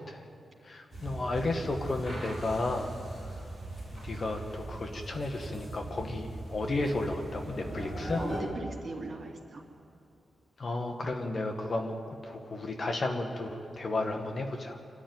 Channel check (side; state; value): both; normal; correlation 0.89